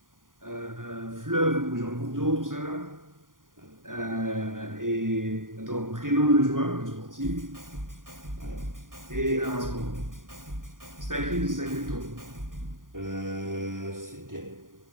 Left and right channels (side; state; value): left; late; 0.90 ms